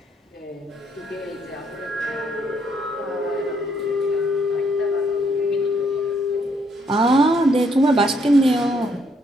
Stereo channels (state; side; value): normal; both; correlation 0.71